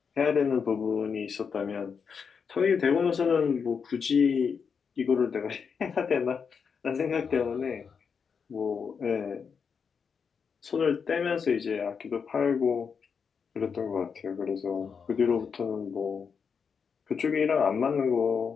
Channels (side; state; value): right; quieter; 6.2 dB